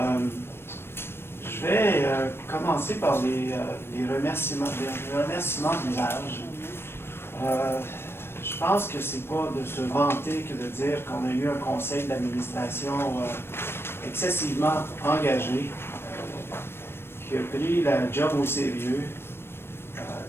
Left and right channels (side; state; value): right; late; 0.12 ms